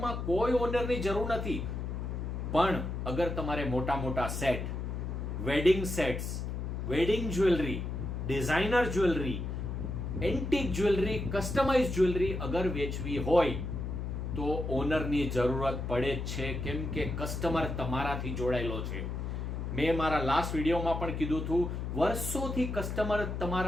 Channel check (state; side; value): noise; left; hum, 4 dB below the sound